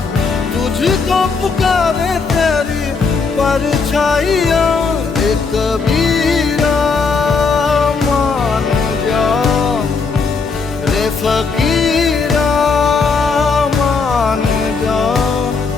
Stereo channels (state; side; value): quieter; right; 4.7 dB